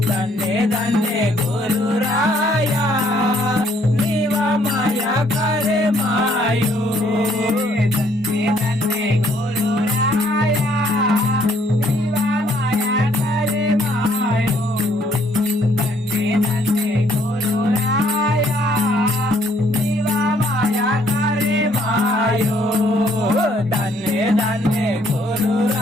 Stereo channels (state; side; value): normal; both; correlation 0.65